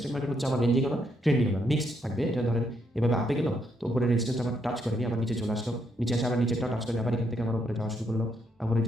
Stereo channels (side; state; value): both; normal; correlation 0.76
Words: মার্কেট হচ্ছে আমার রেঞ্জিং আমার ট্রেন্ডিং আমার মিক্সড থাকবে। এটা ধরেন এভাবে আপে গেল, তো উপরে রেজিস্ট্যান্স আমার টাচ করেনি, আবার নিচে চলে আসলো, নিচে এসে আবার নিচেরটা টাচ করে আবার এখান থেকে আমার উপরে যাওয়া শুরু করলো। আবার এই